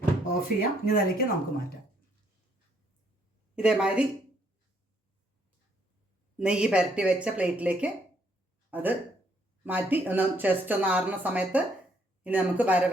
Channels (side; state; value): both; normal; correlation 0.70